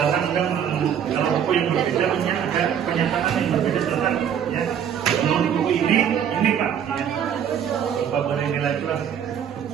kita kalau buku yang berbeda punya ada pernyataan yang berbeda tentang ya menurut buku ini Pak ya. Coba boleh nilai kurang.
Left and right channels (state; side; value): quieter; left; 8.7 dB